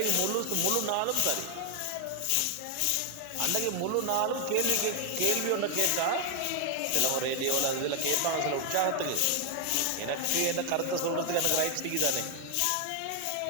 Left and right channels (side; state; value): both; different; correlation 0.00